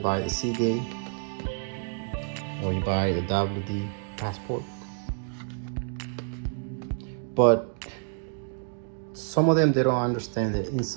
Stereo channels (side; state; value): left; silent; digital silence